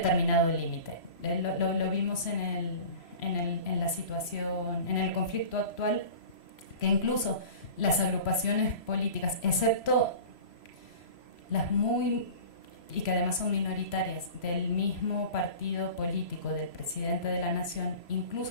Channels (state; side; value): late; right; 3.0 ms